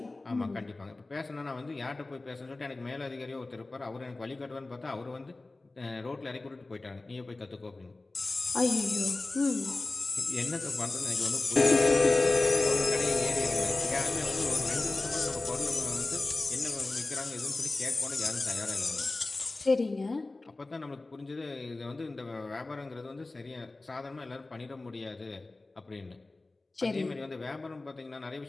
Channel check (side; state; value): right; quieter; 3.1 dB